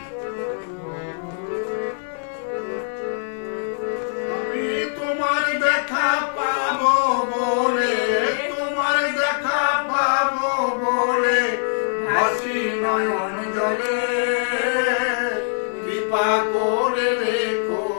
আমি তোমার দেখা পাবো বলে, তোমার দেখা পাবো বলে ভাসি নয়ন জলে, কৃপা করে রেখো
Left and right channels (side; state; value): right; silent; digital silence